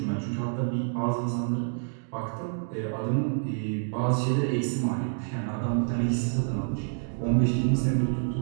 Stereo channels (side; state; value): left; silent; digital silence